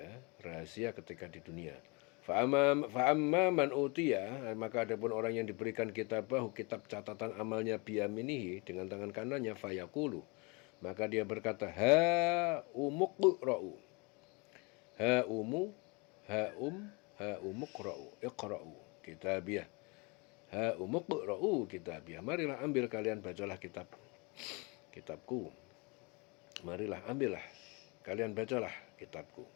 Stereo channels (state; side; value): quieter; right; 29.3 dB